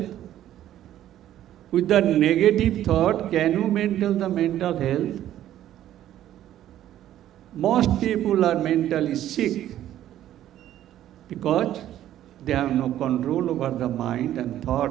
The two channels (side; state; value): left; quieter; 12.3 dB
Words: With the negative thought, can you maintain the mental health? Most people are mentally sick because they have no control over the mind and